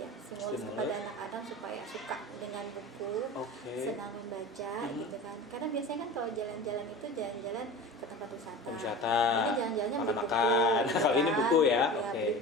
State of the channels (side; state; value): both; normal; correlation 0.34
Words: kepada anak-anak supaya suka dengan buku, senang membaca gitu kan. Karena biasanya kan kalau jalan-jalan itu jalan-jalan ke tempat wisata. Ini jalan-jalannya beli buku. Kalau ini buku ya. Beli